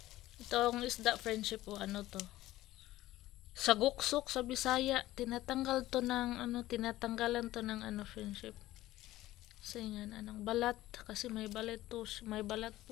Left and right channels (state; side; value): quieter; right; 15.9 dB